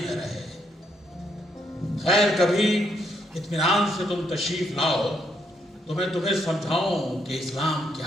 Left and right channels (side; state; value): both; normal; correlation 0.76